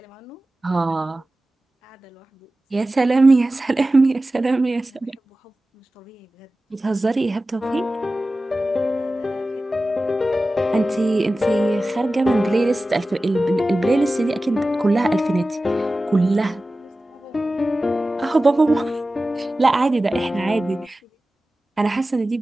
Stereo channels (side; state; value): both; normal; correlation 0.95